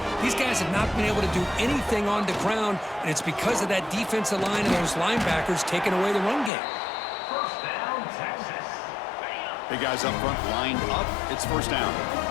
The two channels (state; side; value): drops out; right; at 6.5 s